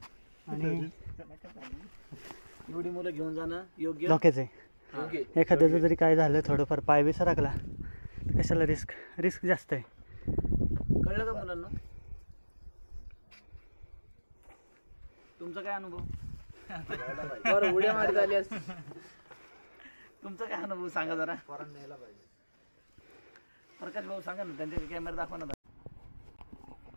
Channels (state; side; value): inverted; both; correlation -1.00